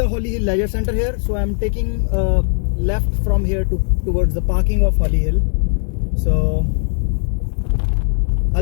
Holly Hill Leisure Center here. So I'm taking left from here towards the parking of Holly Hill. So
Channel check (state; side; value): silent; right; 66 dB below the other